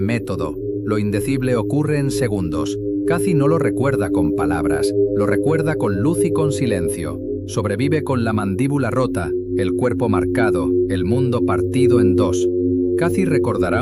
Lo indecible ocurre en segundos. Kathy no lo recuerda con palabras, lo recuerda con luz y con silencio. Sobrevive con la mandíbula rota, el cuerpo marcado, el mundo partido en dos. Kathy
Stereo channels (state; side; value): identical; both; correlation 1.00